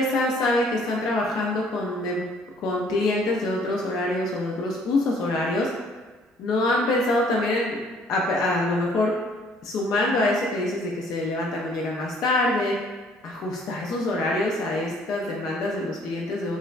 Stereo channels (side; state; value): both; normal; correlation 0.60